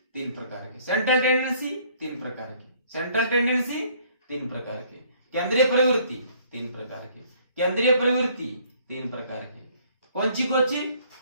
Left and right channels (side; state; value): both; inverted; correlation -0.61